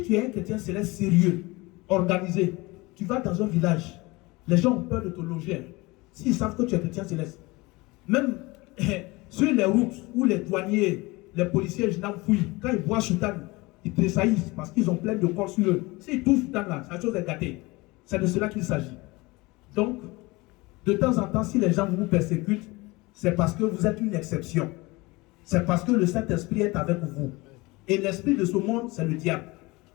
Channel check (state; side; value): quieter; right; 23.0 dB